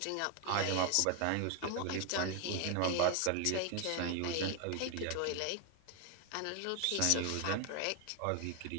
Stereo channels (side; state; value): both; different; correlation 0.01